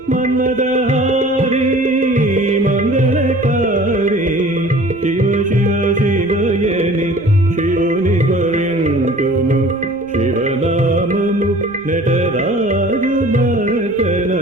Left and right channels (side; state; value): right; noise; rumble, 26 dB below the sound